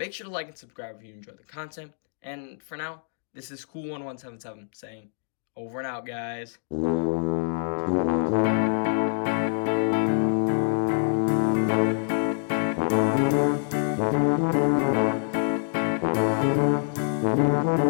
sure to like and subscribe if you enjoyed the content. And for now, this is Cool1177 saying, over and out, guys.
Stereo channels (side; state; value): right; silent; digital silence